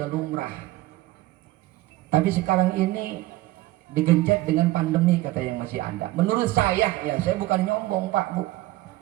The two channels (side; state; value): left; quieter; 17.6 dB